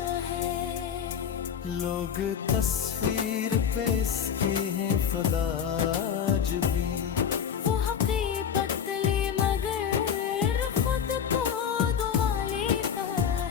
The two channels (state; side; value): quieter; right; 8.0 dB